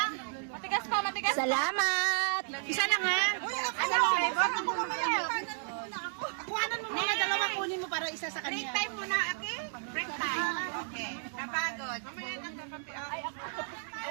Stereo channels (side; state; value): left; silent; digital silence